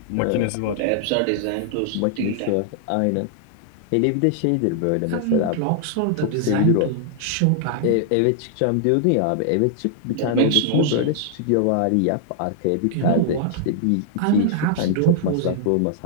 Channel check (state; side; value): different; both; correlation -0.01